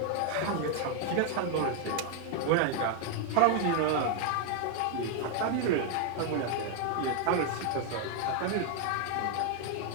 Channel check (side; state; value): both; different; correlation 0.01